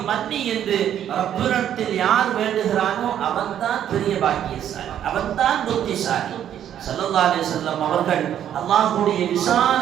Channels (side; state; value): left; quieter; 10.3 dB